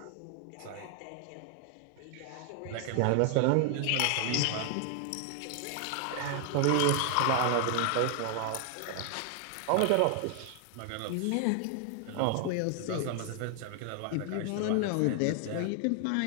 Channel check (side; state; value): both; different; correlation 0.00